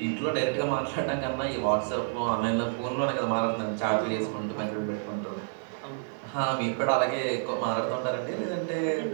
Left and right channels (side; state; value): left; silent; 59 dB below the other